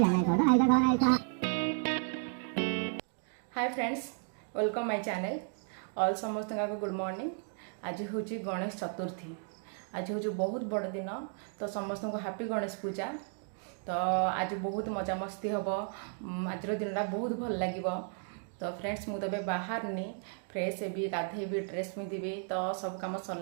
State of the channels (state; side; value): silent; left; 55 dB below the other